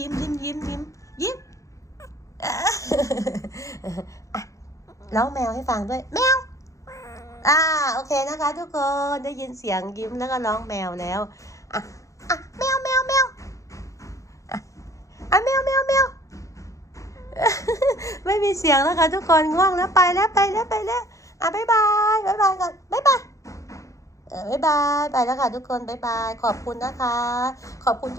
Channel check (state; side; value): late; right; 0.15 ms